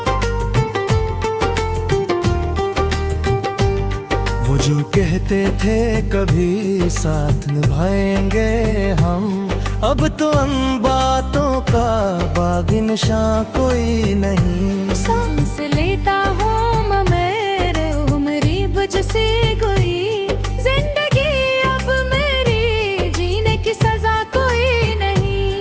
वो जो कहते थे कभी साथ निभाएंगे हम, अब तो उन बातों का बागी निशां कोई नहीं। सांस लेता हूँ मैं मेरे उम्री बुझ सी गई। जिंदगी अब मेरी जीने की सजा कोई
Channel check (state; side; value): identical; both; correlation 1.00